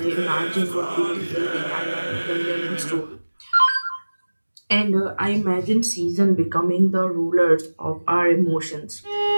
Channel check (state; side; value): inverted; both; correlation -1.00